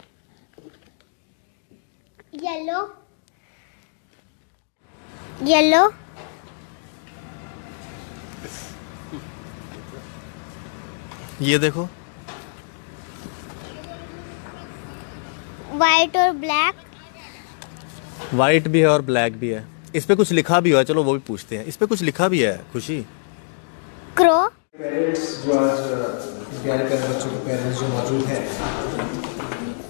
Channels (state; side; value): silent; right; digital silence